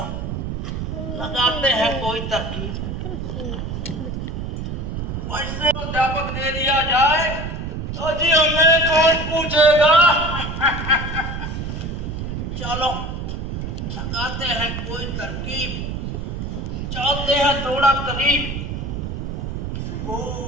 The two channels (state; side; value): noise; right; rumble, 4 dB below the sound